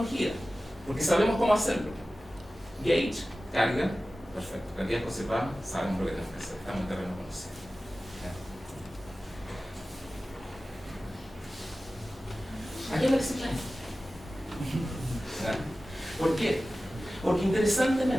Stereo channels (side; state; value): both; normal; correlation 0.96